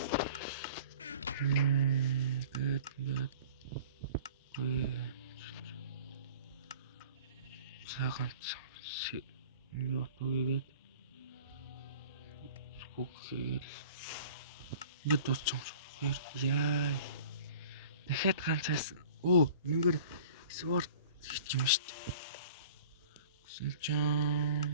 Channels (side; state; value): both; inverted; correlation -0.46